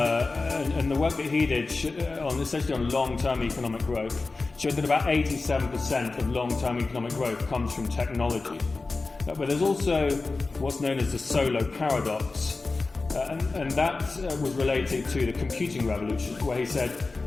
And the work that he did essentially on long-term economic growth showed that about 87% of long-term economic growth comes from technology. But there's also what's known as the Solow paradox. And that was related to the computing revolution, where he said,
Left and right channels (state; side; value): quieter; right; 3.7 dB